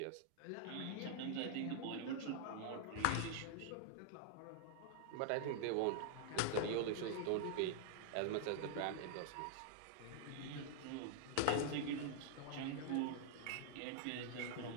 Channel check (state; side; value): different; both; correlation -0.01